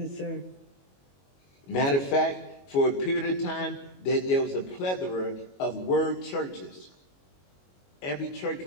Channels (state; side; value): late; right; 22 ms